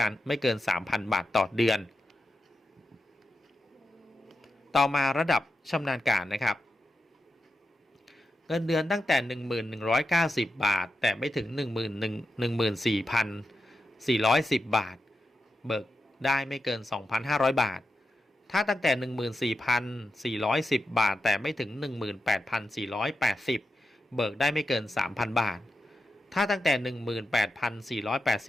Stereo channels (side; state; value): both; normal; correlation 0.89